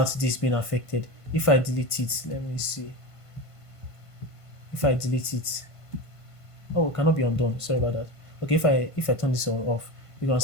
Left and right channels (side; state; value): right; late; 1.5 ms